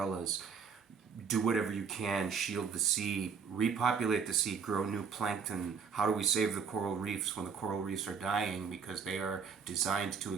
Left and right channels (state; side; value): quieter; left; 6.2 dB